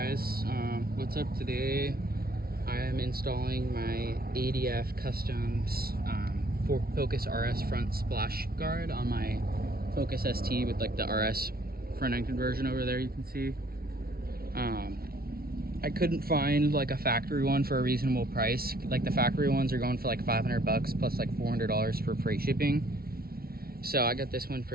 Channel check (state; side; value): late; left; 0.44 ms